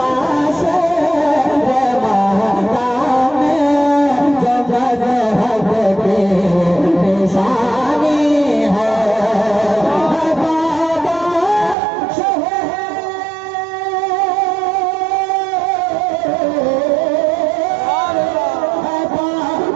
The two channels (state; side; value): drops out; left; at 11.8 s